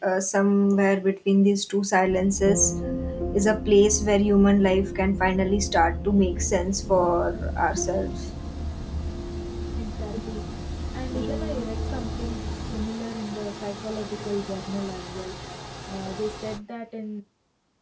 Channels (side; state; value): both; identical; correlation 1.00